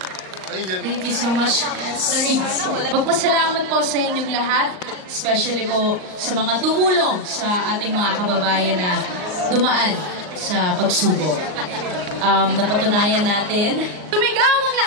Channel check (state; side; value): late; left; 39 ms